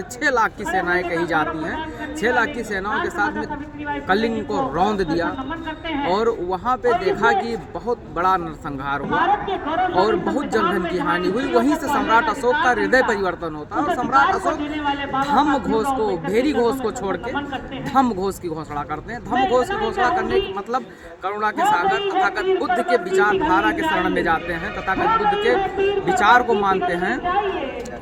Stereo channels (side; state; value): both; identical; correlation 1.00